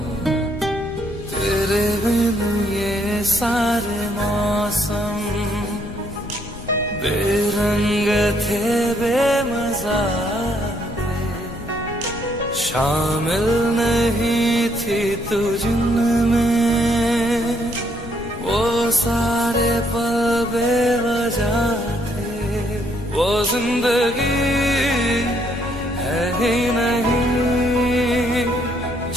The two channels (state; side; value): noise; left; rumble, 13 dB below the sound